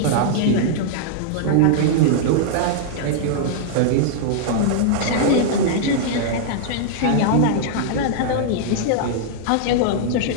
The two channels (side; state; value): both; different; correlation -0.01